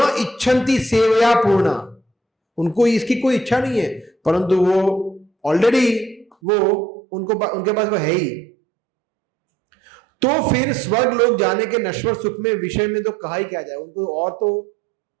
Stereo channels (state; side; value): drops out; left; at 6.4 s